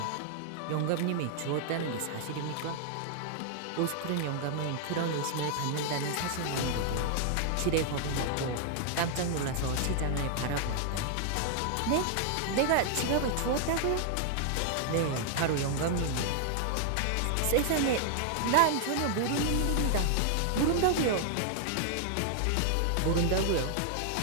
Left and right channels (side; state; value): both; different; correlation 0.00